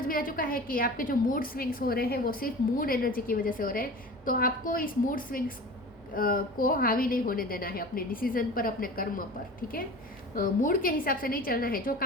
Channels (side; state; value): both; normal; correlation 0.36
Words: में आ चुका है कि आपके जो मूड स्विंग्स हो रहे हैं वो सिर्फ मून एनर्जी की वजह से हो रहे हैं, तो आपको इस मूड स्विंग्स को हावी नहीं होने देना है अपने डिसीजन पर, अपने कर्म पर, ठीक है। मूड के हिसाब से नहीं चलना है, जो